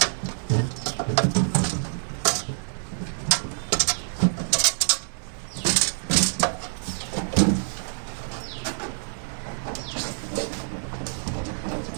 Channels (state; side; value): silent; left; 61 dB below the other